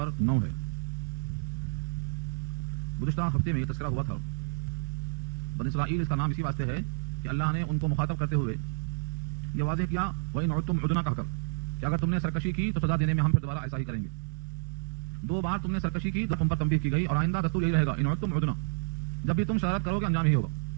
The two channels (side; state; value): left; silent; digital silence